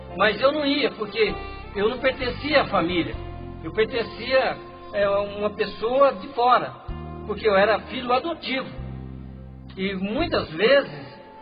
mas eu não ia, porque eu não pertencia à família, eu pertencia a uma pessoa de fora, porque eu era filho adotivo, e muitas vezes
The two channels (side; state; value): both; identical; correlation 1.00